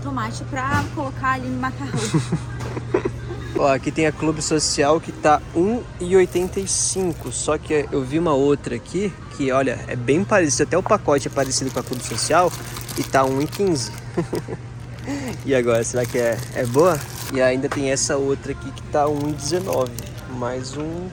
pra colocar ali no macarrão. Ó, aqui tem a Clube Social que tá R$1,85, só que eu vi uma outra aqui que, olha, é bem parecido, até o pacote é parecido com a Clube Social e tá R$1,15. E agora, será que é boa? E ainda tem essa outra aqui que tá R$1,19, mais um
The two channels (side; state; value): both; identical; correlation 1.00